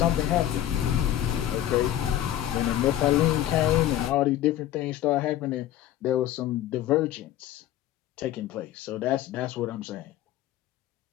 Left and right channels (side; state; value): right; quieter; 12.6 dB